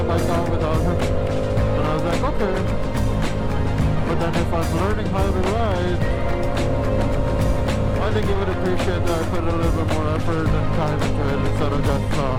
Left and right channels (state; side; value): identical; both; correlation 1.00